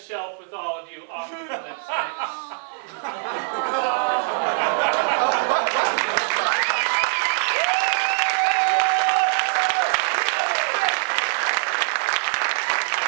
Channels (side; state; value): left; silent; 64 dB below the other